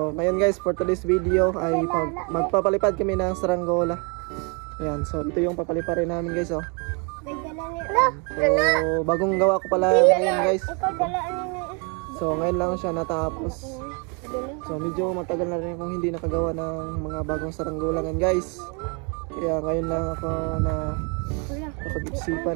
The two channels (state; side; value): quieter; left; 33.5 dB